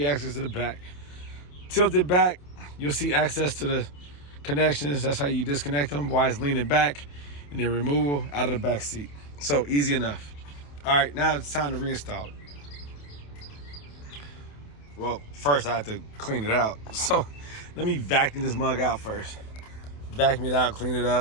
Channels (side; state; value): right; late; 28 ms